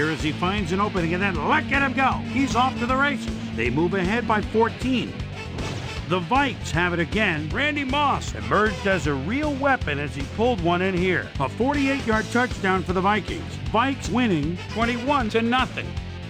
as he finds an opening, and then look at him go. He's off to the races. They move ahead by 14. The Vikes have it again. Randy Moss emerged as a real weapon as he pulled one in here. A 48-yard touchdown for the Vikings. Vikes winning 21-0.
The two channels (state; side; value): identical; both; correlation 1.00